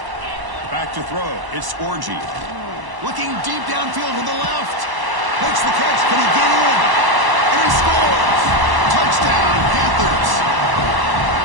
Back to throw. It's Orgy. Looking deep downfield to the left. Makes the catch. Can he get in? And he scores. Touchdown, Panthers.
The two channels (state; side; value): late; left; 1.0 ms